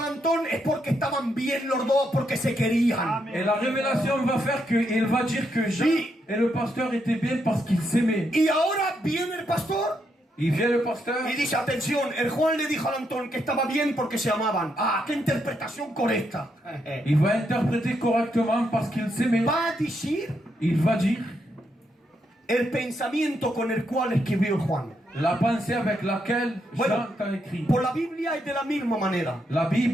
Antón, es porque estaban bien los dos, porque se querían. Et la révélation va faire qu'il va dire que Jean et le pasteur étaient bien parce qu'ils s'aimaient. Y ahora viene el pastor Il vient le pasteur. y dice, atención, el Juan le dijo al Antón que estaba bien porque se amaban. Ah, qué interpretación correcta. Il va interpréter correctement parce qu'ils s'aimaient. Va a decir Il va dire el pensamiento con el cual escribió Juan. la pensée avec laquelle Bueno, Jean a écrit. por la Biblia es de la misma manera. La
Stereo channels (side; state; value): both; normal; correlation 0.79